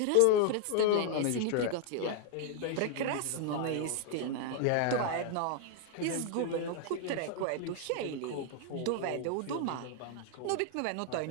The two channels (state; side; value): different; both; correlation 0.00